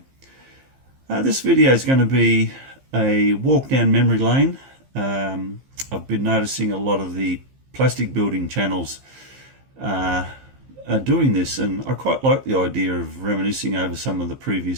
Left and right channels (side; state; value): left; late; 15 ms